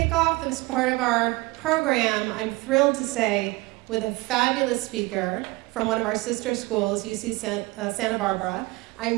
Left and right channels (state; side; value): quieter; left; 22.7 dB